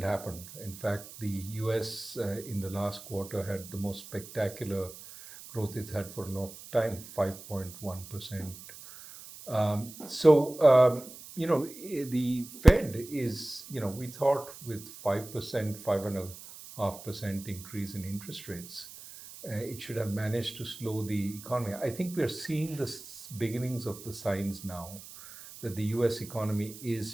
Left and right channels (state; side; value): noise; right; hiss, 15 dB below the sound